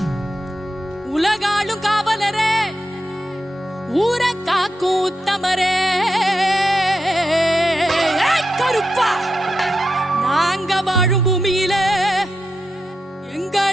உலகாளும் காவலரே ஊர காக்கும் உத்தமரே கருப்பா நாங்க வாழும் பூமியில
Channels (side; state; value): both; normal; correlation 0.87